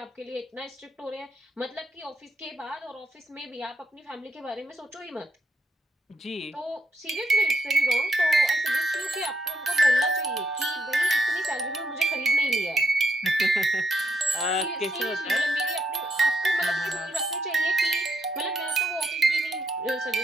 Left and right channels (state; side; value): normal; both; correlation 0.78